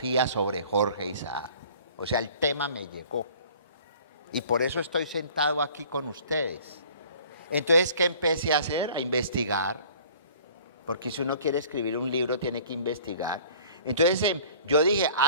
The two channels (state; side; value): inverted; both; correlation -0.49